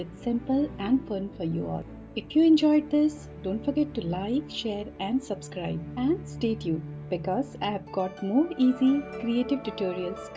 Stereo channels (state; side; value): identical; both; correlation 1.00